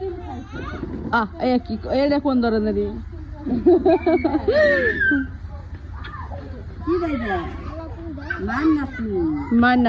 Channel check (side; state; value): both; identical; correlation 1.00